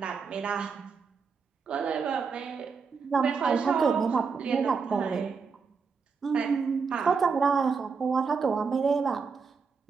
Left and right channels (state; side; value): quieter; left; 5.4 dB